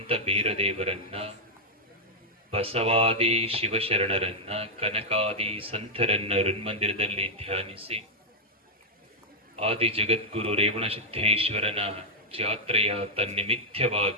ಬೀರದೇವರನ್ನ, ಬಸವಾದಿ ಶಿವಶರಣರನ್ನ, ಕನಕಾದಿ ಸಂತರನ್ನ ಋನ್ಮಂದಿರದಲ್ಲಿ ಧ್ಯಾನಿಸಿ ಆದಿ ಜಗದ್ಗುರು ರೇವಣ ಸಿದ್ದೇಶ್ವರನ ಜಾತ್ರೆಯ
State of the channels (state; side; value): normal; both; correlation -0.03